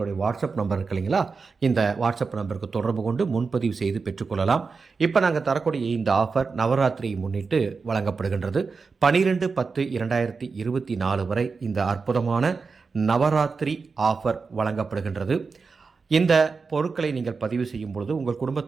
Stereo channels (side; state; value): left; quieter; 4.7 dB